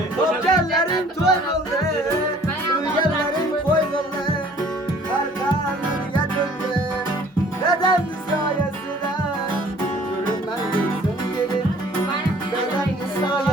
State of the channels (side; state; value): both; normal; correlation 0.54